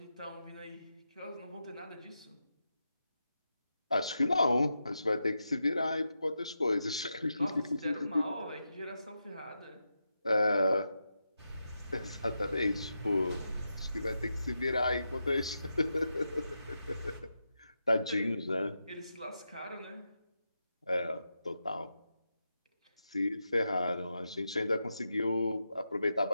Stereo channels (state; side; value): inverted; both; correlation -0.87